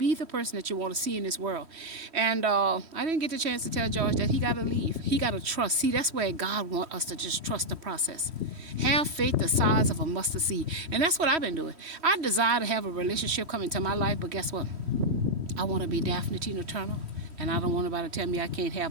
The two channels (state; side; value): late; left; 3.1 ms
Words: the person that you want to see in this world. And I didn't get the chance to tell George that he got to leave. He got to trust. See, that's where God wants us to just trust the process. Have faith the size of a mustard seed. And that's what I've been doing. I desire to have a relationship come into my life, but guess what? I want to be Daphne Tina Turner. And I don't want nobody to tell me I can't have